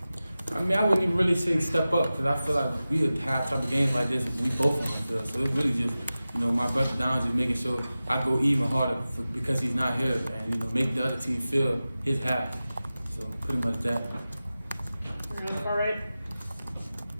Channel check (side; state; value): both; inverted; correlation -0.95